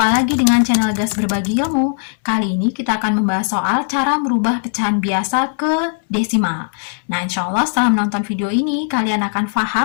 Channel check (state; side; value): silent; right; 68 dB below the other